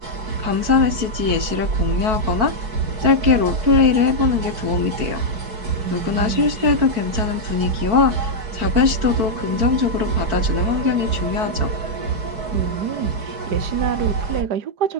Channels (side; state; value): left; late; 4.6 ms